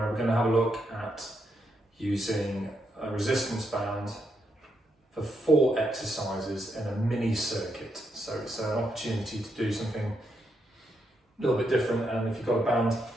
we're going to have a look at using a resistance band for 4 exercises in a mini circuit. So it's an opportunity to do something a little bit different, and if you've got a band,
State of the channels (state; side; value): normal; both; correlation 0.80